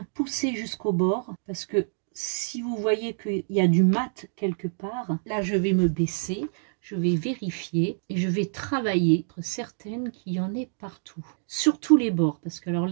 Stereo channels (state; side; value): silent; left; digital silence